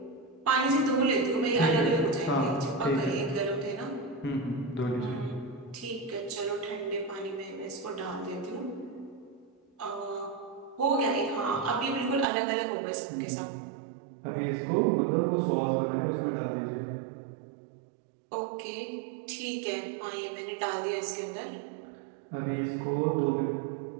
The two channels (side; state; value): left; drops out; at 12.2 s